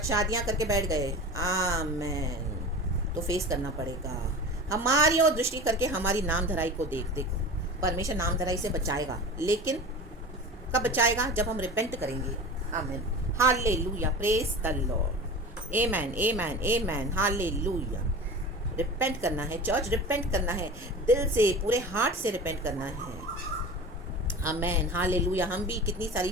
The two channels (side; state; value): both; normal; correlation 0.34